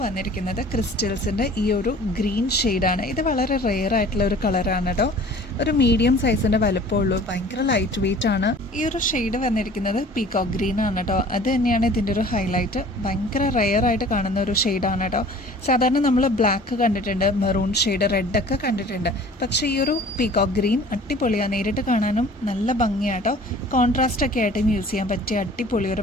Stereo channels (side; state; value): both; normal; correlation 0.48